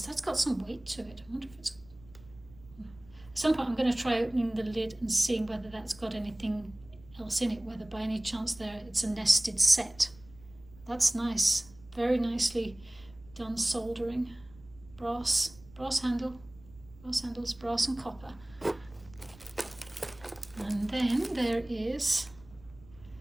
That's got some weight to it. I wonder if it's... At some point I'm going to try opening the lid and seeing whether that's got anything else in it, whether by any chance there it's a nested set. That's nice. Very nicely done soldering. Brass handles, brass and copper. And then there is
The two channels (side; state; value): right; noise; rumble, 23 dB below the sound